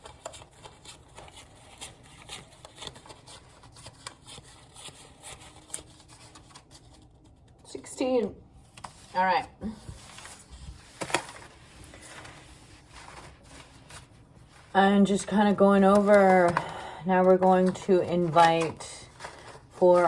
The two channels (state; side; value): identical; both; correlation 1.00